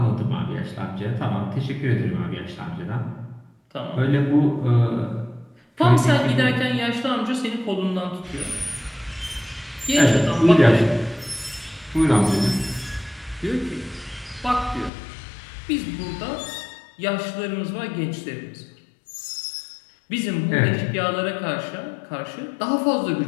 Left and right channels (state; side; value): drops out; right; at 14.9 s